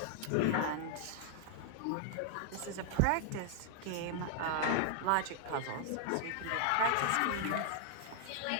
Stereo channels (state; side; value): different; both; correlation 0.00